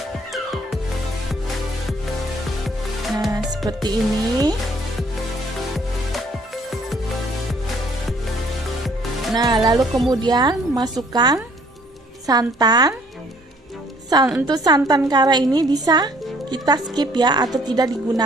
Nah, seperti ini. Nah, lalu kemudian masukkan santan. Untuk santan kara ini bisa kita skip ya, atau tidak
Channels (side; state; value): both; normal; correlation 0.60